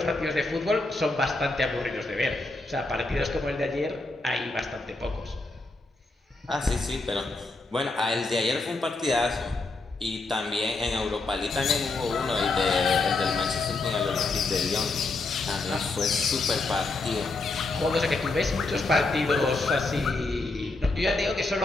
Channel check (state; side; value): quieter; right; 3.3 dB